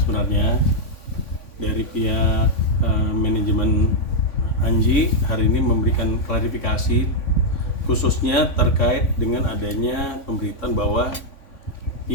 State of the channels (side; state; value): right; late; 3.5 ms